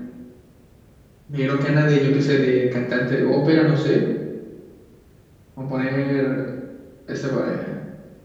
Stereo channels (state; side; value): identical; both; correlation 1.00